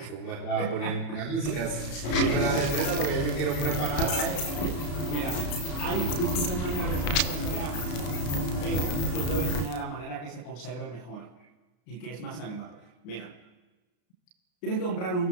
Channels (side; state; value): right; late; 33 ms